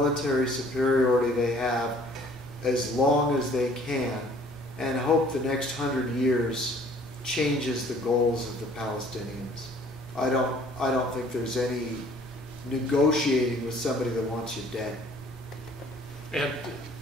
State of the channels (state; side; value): normal; both; correlation 0.55